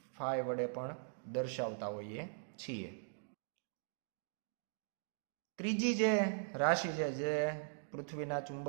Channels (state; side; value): silent; left; digital silence